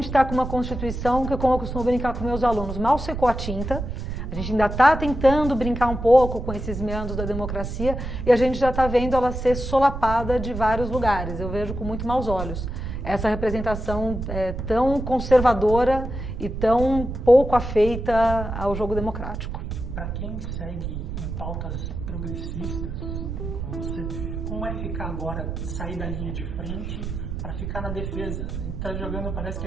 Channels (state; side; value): noise; right; rumble, 5 dB below the sound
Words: está com uma Constituição que, como eu costumo brincar com meus alunos, mal secou a tinta, a gente ainda está tentando brincar um pouco com esses meandros da democracia e a gente já está vendo ela ser solapada de vários lugares. Eu vejo com muito maus olhos essa representação tão conservadora e tão pouco afeita ao jogo democrático. Para quem segue em pautas progressistas, como é ficar agora, sair da linha de frente para ficar na defesa? A gente está jogando, parece que